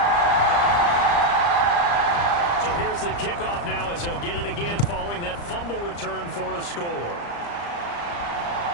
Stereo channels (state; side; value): late; right; 35 ms